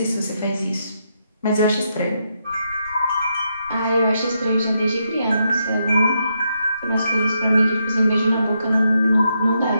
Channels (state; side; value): inverted; both; correlation -0.80